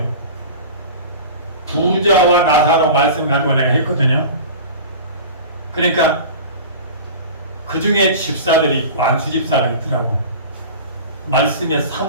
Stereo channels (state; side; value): inverted; both; correlation -0.35